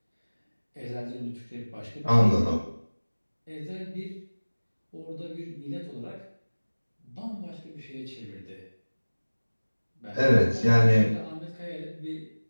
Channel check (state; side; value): inverted; both; correlation -1.00